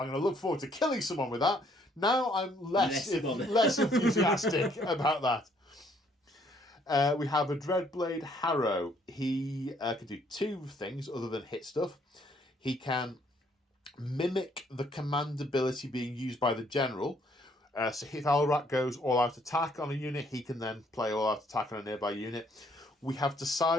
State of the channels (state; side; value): normal; both; correlation 0.66